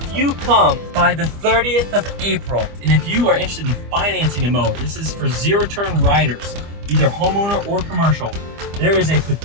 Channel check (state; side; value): late; left; 25 ms